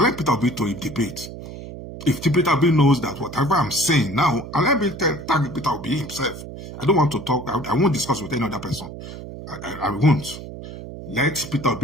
Peter Obi to a debate. If Peter Obi knows that whatever I'm saying now, and let me tag Peter Obi himself. I don't want to talk. I won't discuss with any other person. I won't. Let Peter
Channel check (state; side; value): noise; right; hum, 12 dB below the sound